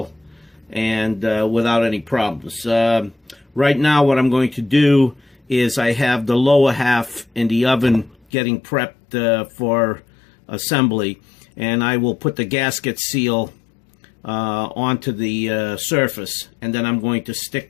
and without any problems. Right now, what I'm going to do is I have the lower half in the oven getting prepped for assembly, and I will put the gasket seal onto the surface, and then I'm going to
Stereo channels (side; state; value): right; drops out; at 8.2 s